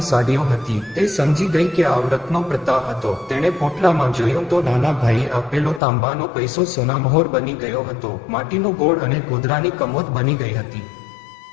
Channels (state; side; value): drops out; right; at 5.8 s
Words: સાડીઓ હતી. તે સમજી ગઈ કે આ વ્રતનો પ્રતાપ હતો. તેણે પોટલામાં જોયું તો નાના ભાઈએ આપેલો તાંબાનો પૈસો સોનામહોર બની ગયો હતો. માટીનો ગોળ અને ગોદરાની કમોદ બની ગઈ હતી.